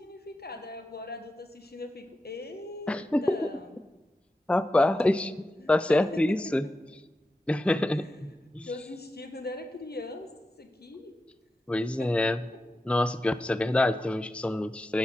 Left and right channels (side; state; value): both; normal; correlation 0.90